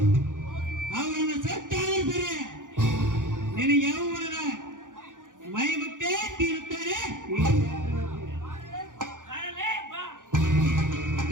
ಅವರನ್ನು ಸತ್ತಾದರೂ ಸರಿ, ನಿನ್ನ ಯೌವನದ ಮೈ ಮುಟ್ಟೆ ತೀರುತ್ತಾರೆ.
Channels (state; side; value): late; left; 0.88 ms